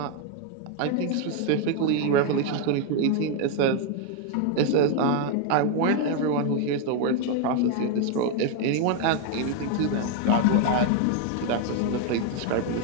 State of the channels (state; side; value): different; both; correlation 0.01